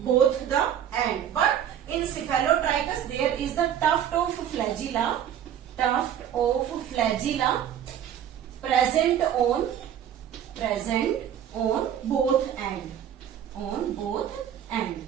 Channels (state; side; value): quieter; left; 9.7 dB